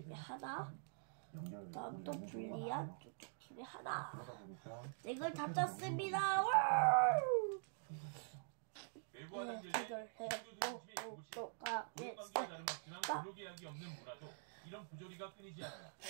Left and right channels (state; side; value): silent; left; digital silence